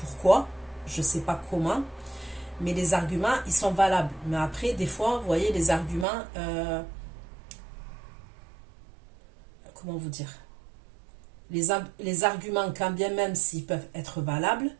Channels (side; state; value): left; drops out; at 6.1 s